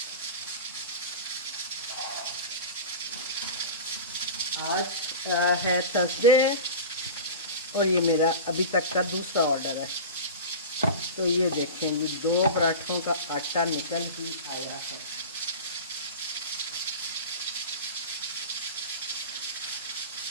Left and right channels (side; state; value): both; inverted; correlation -0.30